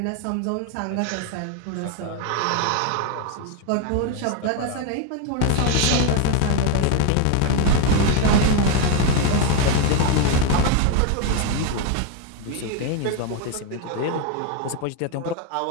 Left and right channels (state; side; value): different; both; correlation 0.01